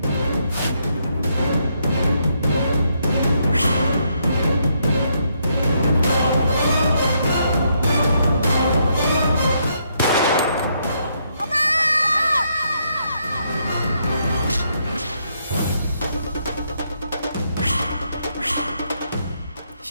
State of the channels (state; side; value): inverted; both; correlation -0.75